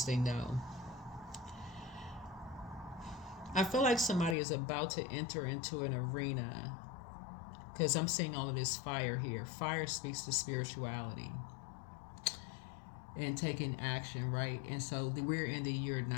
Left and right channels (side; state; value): right; drops out; at 4.4 s